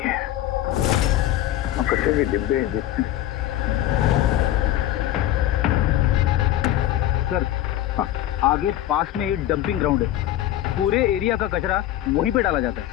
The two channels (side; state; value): right; quieter; 13.2 dB